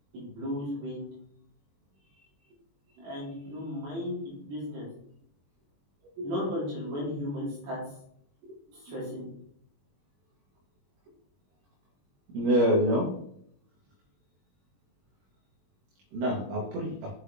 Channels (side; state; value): left; late; 21 ms